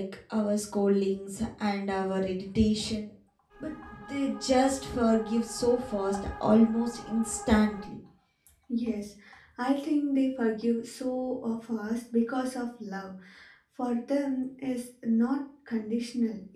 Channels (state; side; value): identical; both; correlation 1.00